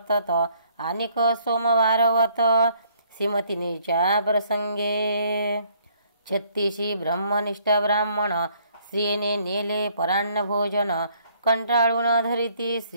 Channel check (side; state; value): both; inverted; correlation -0.64